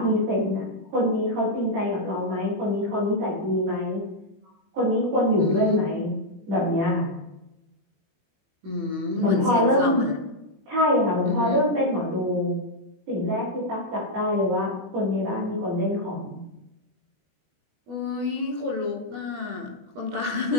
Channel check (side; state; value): left; late; 20 ms